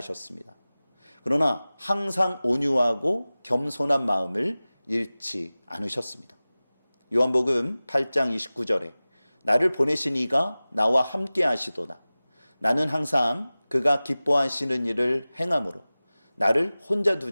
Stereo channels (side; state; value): both; inverted; correlation -0.98